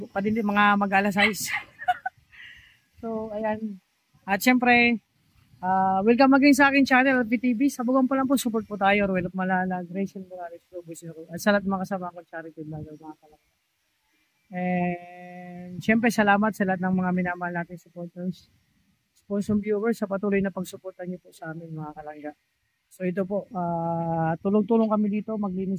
Padili mga mag-alas 6. So ayan. At syempre, welcome again sa akin channel, LPTV. Sabugan pa lang po, support po tayo. Ruel of Malalag, Rachel Morales, Robo Zero. At sa lahat mga kasama ko, charity vlogger, mga kalangga. And syempre salamat sa lahat ng mga minamahal natin supporters, sponsor viewers sa patuloy na pagsuportan niyo po sa amin mga kalangga. So ito po, tulong-tulong kami dito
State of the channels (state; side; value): identical; both; correlation 1.00